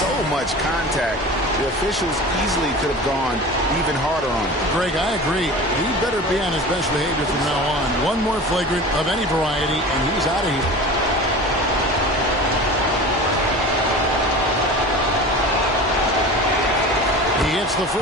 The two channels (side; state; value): both; normal; correlation 0.35